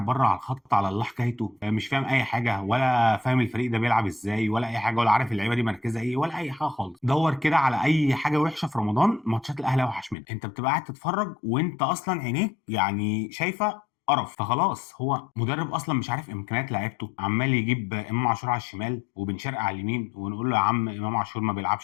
بره على الخط على الله حكايته، مش فاهم اي حاجه، ولا فاهم الفريق ده بيلعب ازاي ولا اي حاجه، ولا عارف اللعيبه دي مركزها ايه ولا اي حاجه خالص. دور كده على اي حاجه وحشه في رمضان، ماتشات الاهلي اوحش منها. انت بتبقى قاعد تتفرج وانت اصلا عينيك يعني شايفه قرف. فخلاص هو مدرب اصلا مش عارف امكانيات لعيبته، عمال يجيب امام عاشور على الشمال وبن شرقي على اليمين، ونقول له يا عم امام عاشور ما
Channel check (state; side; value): drops out; right; at 10.2 s